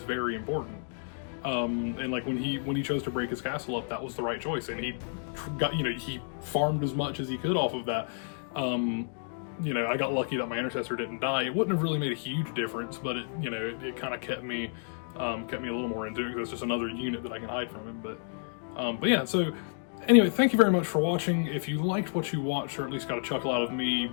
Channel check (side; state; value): right; silent; digital silence